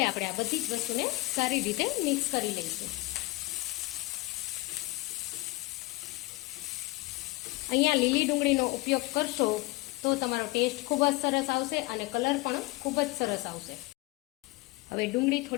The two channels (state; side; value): quieter; right; 22.0 dB